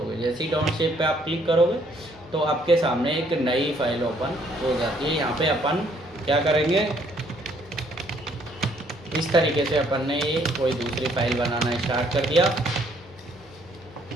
जैसे ही डोंट सेव पे आप क्लिक करोगे तो आपके सामने एक नई फाइल ओपन हो जाती है। यहाँ पे अपन क्या करेंगे, इस तरीके से अपन ने ये कोई दूसरी फाइल बनाना स्टार्ट कर दिया।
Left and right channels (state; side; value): normal; both; correlation 0.65